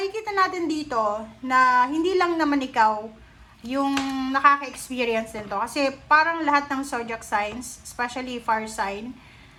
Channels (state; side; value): identical; both; correlation 1.00